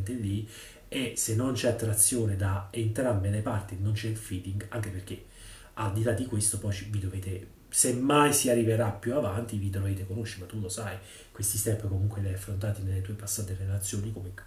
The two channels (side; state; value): both; identical; correlation 1.00